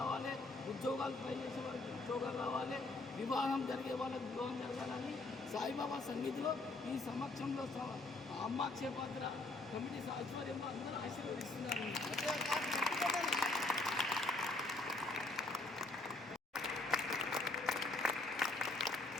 ఉద్యోగాలు ట్రై చేసే వాళ్ళకి ఉద్యోగాలు రావాలి, వివాహం జరిగే వాళ్ళకి వివాహం జరగాలని సాయిబాబా సన్నిధిలో ఈ సమక్షంలో అమ్మ క్షేపాత్ర కమిటీ ఆధ్వర్యంలో అందరూ ఆశీర్వదిస్తున్నారు.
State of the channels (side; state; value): right; quieter; 3.1 dB